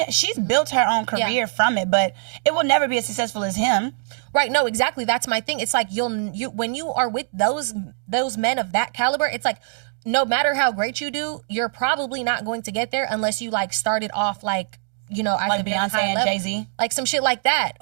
built her own career from it, but it will never be as successful as him. Right? No, exactly. That's my thing. It's like you when you are with those men of that caliber, it's like, no matter how great you do, you're probably not going to get there unless you like started off like, you know, like Beyonce and Jay-Z, like some shit like that,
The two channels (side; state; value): left; silent; digital silence